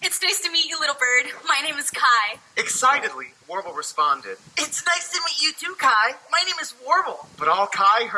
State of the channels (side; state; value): both; identical; correlation 1.00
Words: It's nice to meet you, little bird. My name is Kai. Excitedly, Warble responded. It's nice to meet you too, Kai. My name is Warble. But all Kai